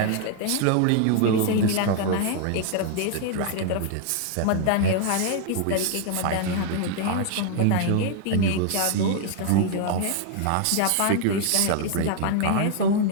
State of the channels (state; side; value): different; both; correlation 0.00